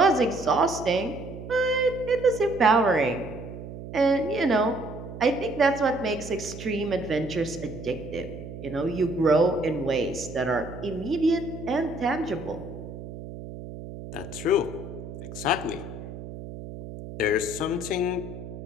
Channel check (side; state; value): right; noise; hum, 11 dB below the sound